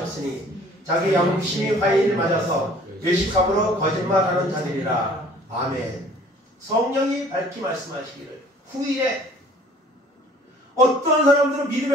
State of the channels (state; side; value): normal; both; correlation 0.52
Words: 자기 양심이 화인을 맞아서 외식함으로 거짓말하는 자들이라. 아멘. 성령이 밝히 말씀하시기를 후일에 어떤 사람들은